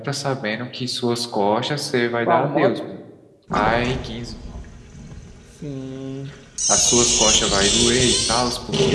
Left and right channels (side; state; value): both; identical; correlation 1.00